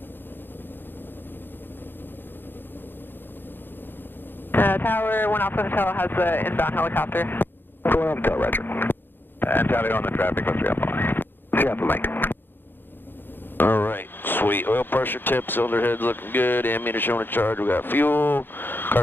Tower 1 Alpha Hotel has the inbound helicopter. 1 Alpha Hotel, roger. And tally on the traffic with 3 Alpha Mike. 3 Alpha Mike. Alright, sweet. Oil pressure tip, cylinder head's looking good, ammeter showing a charge, we got fuel,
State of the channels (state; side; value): late; right; 0.098 ms